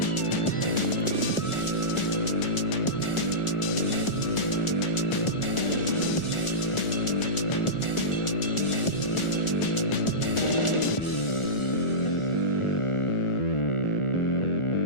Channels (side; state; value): right; late; 1.4 ms